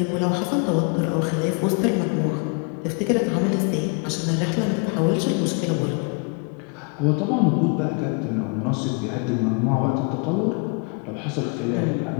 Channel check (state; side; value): quieter; right; 35.9 dB